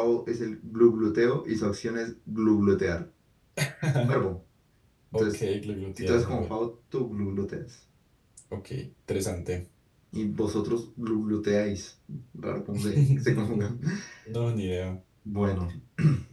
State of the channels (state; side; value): identical; both; correlation 1.00